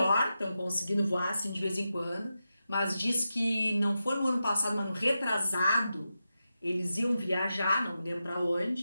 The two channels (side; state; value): both; inverted; correlation -0.90